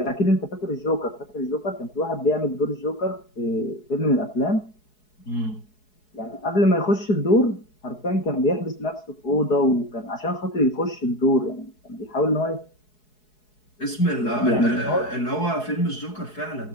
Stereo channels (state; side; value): late; right; 4.7 ms